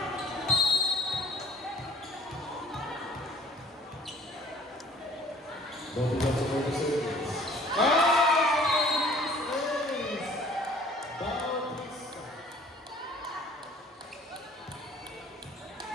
Don't forget to go to service.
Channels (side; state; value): both; normal; correlation 0.55